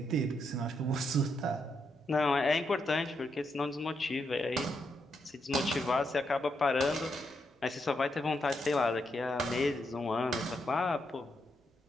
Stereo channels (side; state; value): both; normal; correlation 0.80